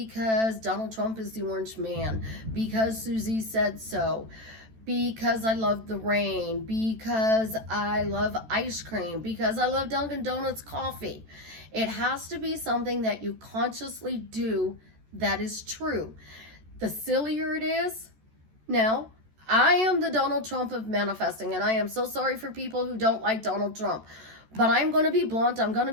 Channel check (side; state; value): left; late; 14 ms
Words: Donald Trump is the orange man, because Susie said so, because I love the rain, because I love ice cream, because I love Dunkin' Donuts coffee. It has to be something that you consciously do that is true. The sillier it is, now, I am the Donald Trump of manifesting, and I am so sorry for people who don't like Donald Trump. But I'm going to be blunt. I'm going to